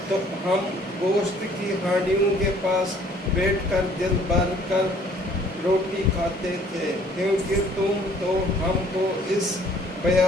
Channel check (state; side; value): normal; both; correlation 0.58